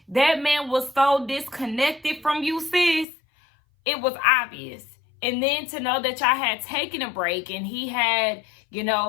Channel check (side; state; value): right; drops out; at 3.1 s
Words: That man was so disconnected from you, sis. It was obvious. And then to know that y'all had taken a break and he had,